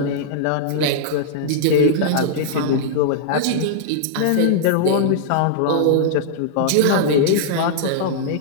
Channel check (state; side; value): different; both; correlation -0.02